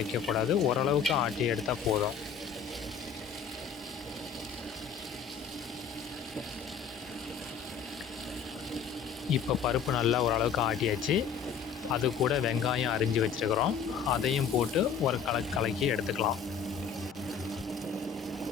ஓரளவுக்கு ஆட்டி எடுத்தால் போதும். இப்போ பருப்பு நல்லா ஓரளவுக்கு ஆட்டியாச்சு. அது கூட வெங்காயம் அரிஞ்சு வச்சுருக்கிறோம், அதையும் போட்டு ஒரு கலக்கி எடுத்துக்கலாம்.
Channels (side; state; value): right; quieter; 6.8 dB